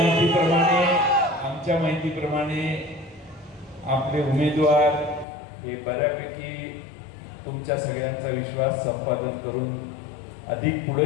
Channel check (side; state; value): right; drops out; at 5.2 s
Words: आमच्या माहितीप्रमाणे आपले उमेदवार हे बऱ्यापैकी तुमच्या सगळ्यांचा विश्वास संपादन करून अधिक पुढे